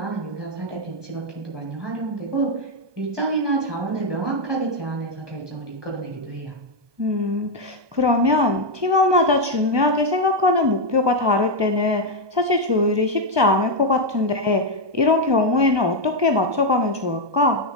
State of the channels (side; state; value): left; late; 1.2 ms